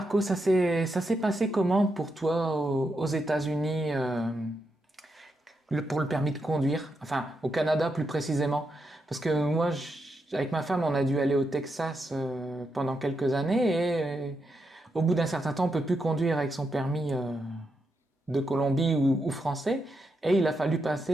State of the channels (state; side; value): normal; both; correlation 0.84